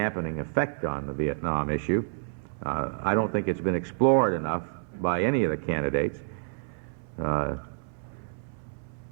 effect on the Vietnam issue. I don't think it's been explored enough by any of the candidates. But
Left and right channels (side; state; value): left; silent; 59 dB below the other